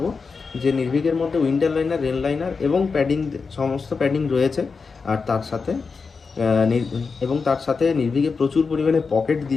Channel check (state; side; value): quieter; right; 4.9 dB